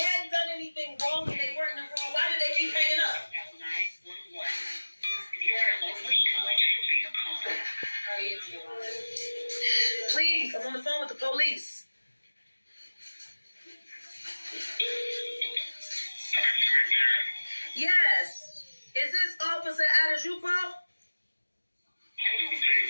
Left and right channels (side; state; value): both; inverted; correlation -1.00